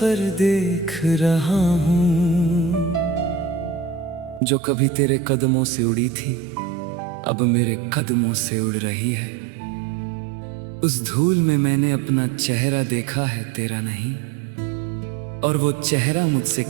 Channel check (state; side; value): drops out; left; at 4.4 s